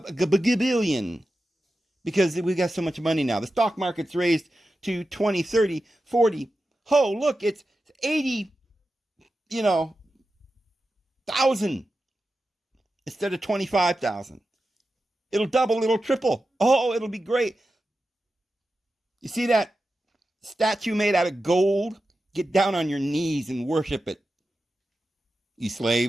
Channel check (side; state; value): both; normal; correlation 0.92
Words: billion, because we got so much money now. The stock market's raised to 20, 30, 40. Oh, look, it's 80, thousand instead of 25,000. It'll double, it'll triple. Oh, it'll be great. You see that statue made out of gold? Get down on your knees and worship it, you